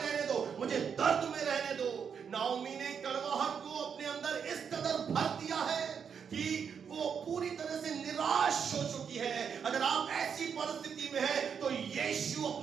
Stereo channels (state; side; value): quieter; left; 7.0 dB